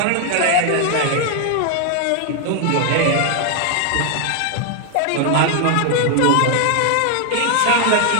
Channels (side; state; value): both; different; correlation 0.00